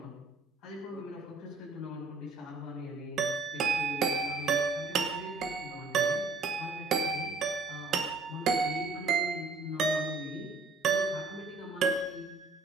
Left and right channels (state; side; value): quieter; left; 3.7 dB